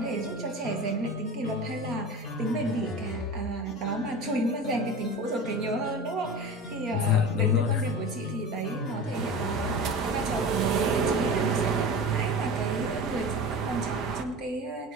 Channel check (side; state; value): both; normal; correlation 0.32